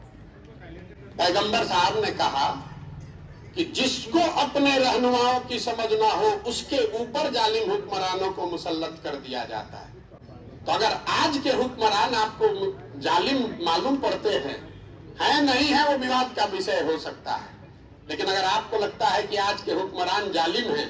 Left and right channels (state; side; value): identical; both; correlation 1.00